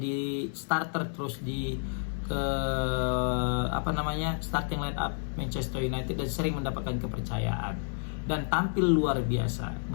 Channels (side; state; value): right; silent; digital silence